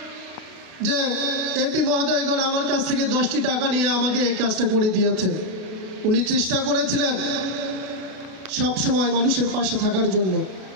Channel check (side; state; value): left; late; 32 ms